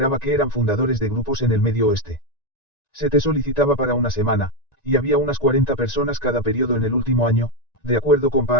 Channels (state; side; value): late; right; 1.9 ms